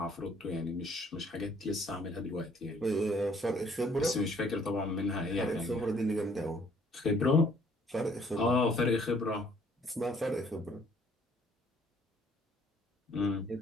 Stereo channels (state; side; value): normal; both; correlation 0.61